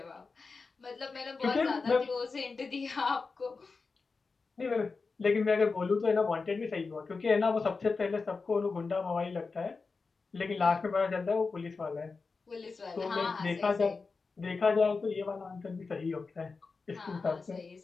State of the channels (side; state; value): right; quieter; 4.4 dB